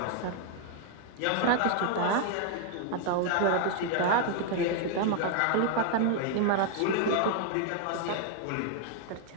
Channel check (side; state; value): both; different; correlation 0.00